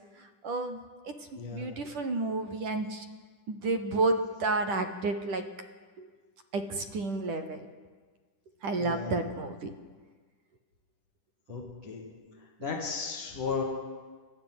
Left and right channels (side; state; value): left; late; 10 ms